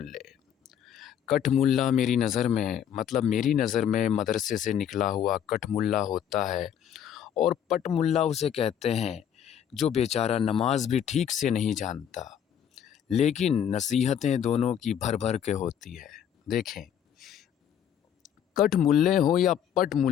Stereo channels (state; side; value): quieter; right; 9.2 dB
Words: कठ मुल्ला मेरी नज़र में मदरसे से निकला हुआ कठ मुल्ला होता है, और पट मुल्ला उसे कहते हैं जो बेचारा नमाज भी ठीक से नहीं जानता, लेकिन नसीहतें दोनों की भर भर के होती है। देखें, कठ मुल्ले हो या पट